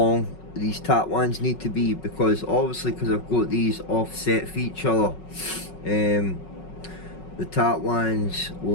these tap wands need to be, because obviously because I've got these offset for each other, the tap wands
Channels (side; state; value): right; late; 5.4 ms